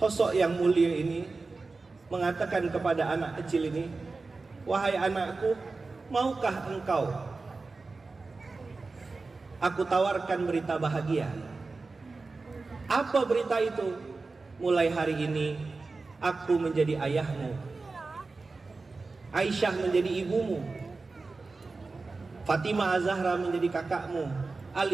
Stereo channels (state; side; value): quieter; left; 3.8 dB